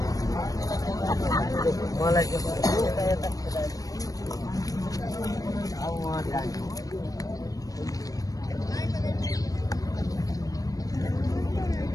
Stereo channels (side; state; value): right; late; 0.17 ms